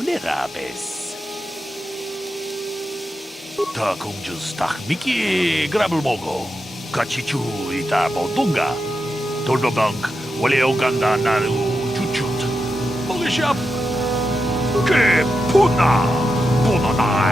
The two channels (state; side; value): normal; both; correlation 0.88